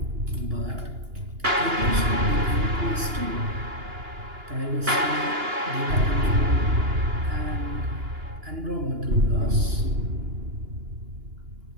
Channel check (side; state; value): left; late; 2.9 ms